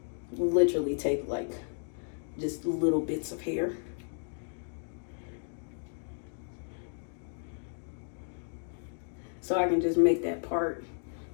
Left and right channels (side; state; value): right; silent; digital silence